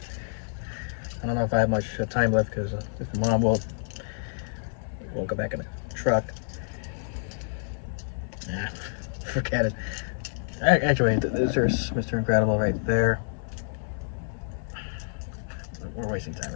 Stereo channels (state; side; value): silent; right; 59 dB below the other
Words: I don't know if I have much time left, because if Mom will go back in the truck. Nah, forget it. Actually, there's Mr. Incredible right there. We're wasting time,